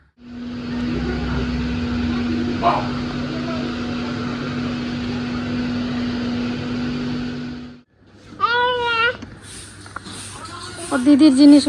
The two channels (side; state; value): both; identical; correlation 1.00